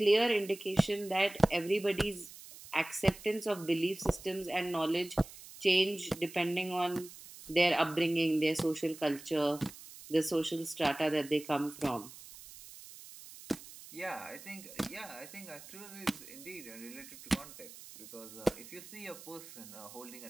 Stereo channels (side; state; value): right; noise; hiss, 16 dB below the sound